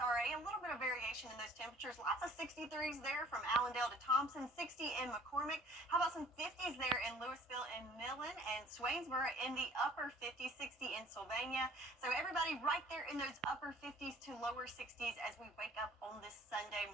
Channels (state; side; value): normal; both; correlation 0.53